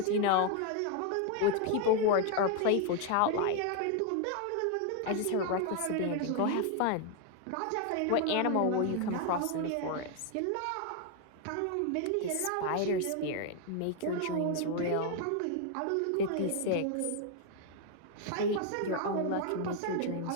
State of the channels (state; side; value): different; both; correlation 0.00